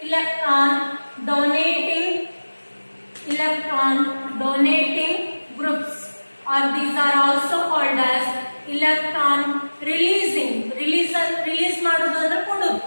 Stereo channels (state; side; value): inverted; both; correlation -1.00